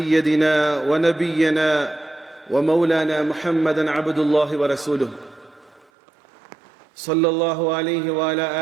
ونبينا ومولانا محمدا عبد الله ورسوله صلى الله عليه وعلى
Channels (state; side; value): drops out; left; at 5.9 s